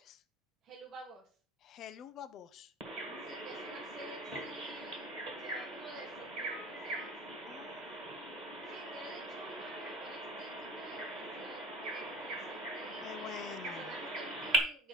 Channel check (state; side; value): normal; both; correlation 0.32